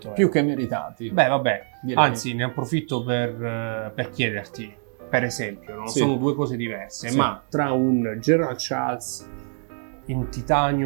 euro. più che meritati. Beh, vabbè, direi. anzi ne approfitto per chiederti, per esempio, no? Sì. Sono due cose diverse, Sì. ma tra un Gerald Charles in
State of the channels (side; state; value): left; silent; 62 dB below the other